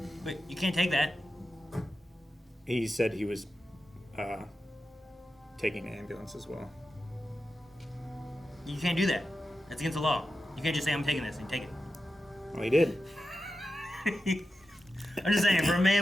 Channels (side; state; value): both; normal; correlation 0.91